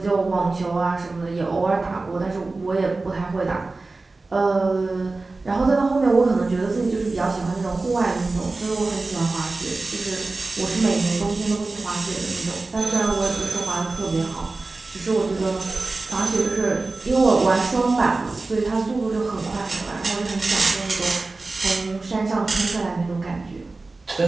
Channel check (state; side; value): quieter; left; 3.5 dB